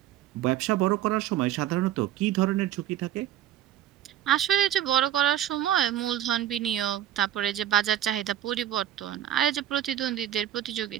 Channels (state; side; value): quieter; left; 11.9 dB